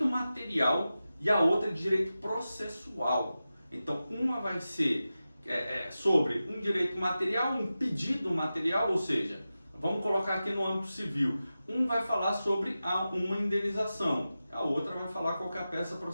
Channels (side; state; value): both; inverted; correlation -0.93